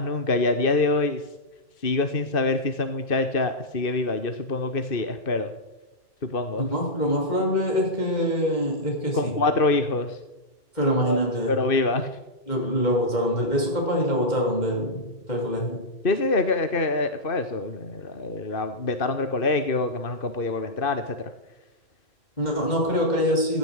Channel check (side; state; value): right; late; 2.1 ms